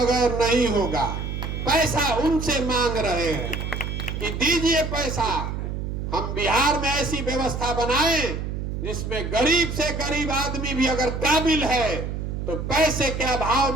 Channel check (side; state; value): right; noise; hum, 4 dB below the sound